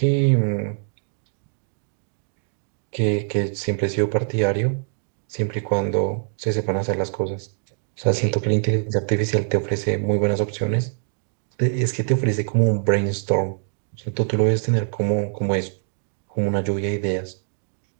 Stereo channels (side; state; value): left; silent; 63 dB below the other